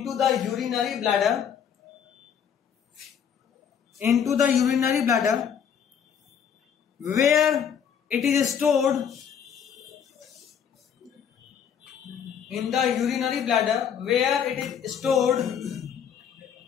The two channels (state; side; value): quieter; right; 7.9 dB